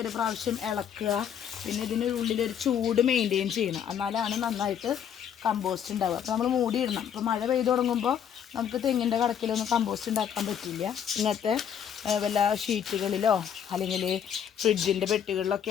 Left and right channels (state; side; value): quieter; right; 8.6 dB